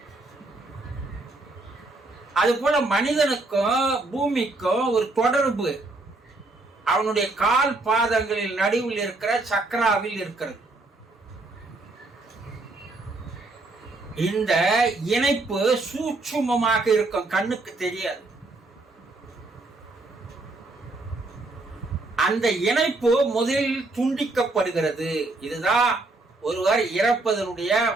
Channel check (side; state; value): left; quieter; 3.1 dB